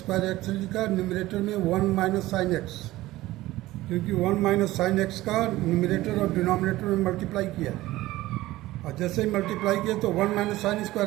एक्स लिखा, न्यूमरेटर में 1 माइनस साइन एक्स, क्योंकि 1 माइनस साइन एक्स का न्यूमरेटर और डिनोमिनेटर में मल्टीप्लाई किया, और जैसे ही मल्टीप्लाई किया तो 1 minus sine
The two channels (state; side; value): quieter; left; 17.1 dB